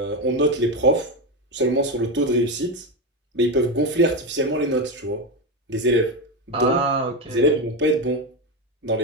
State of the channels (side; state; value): both; normal; correlation 0.13